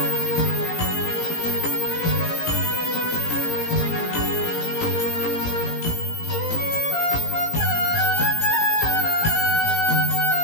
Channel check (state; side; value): late; right; 17 ms